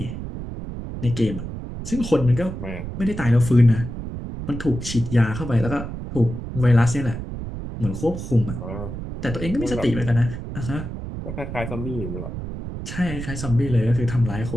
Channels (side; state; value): right; noise; rumble, 7 dB below the sound